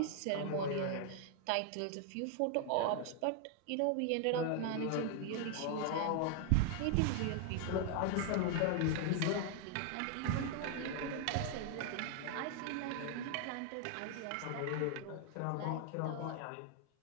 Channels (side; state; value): both; different; correlation 0.00